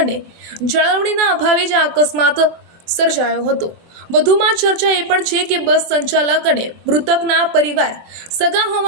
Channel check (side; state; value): left; late; 24 ms